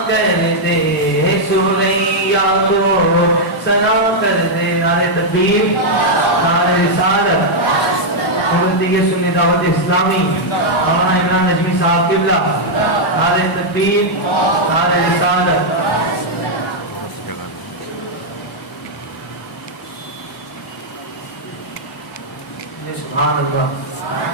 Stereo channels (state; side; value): normal; both; correlation -0.03